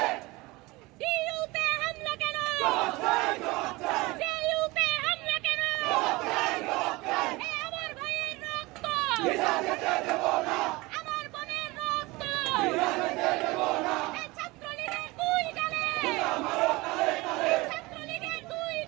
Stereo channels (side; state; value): left; quieter; 22.6 dB